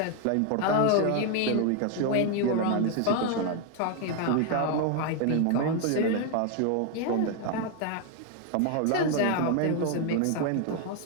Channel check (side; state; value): both; different; correlation 0.01